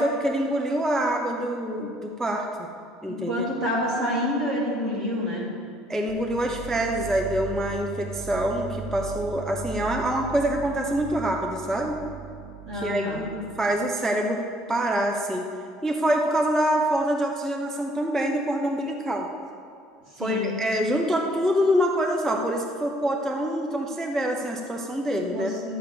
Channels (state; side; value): normal; both; correlation 0.66